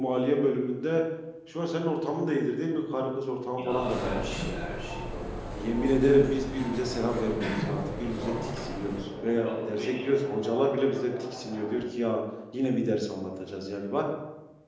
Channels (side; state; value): both; identical; correlation 1.00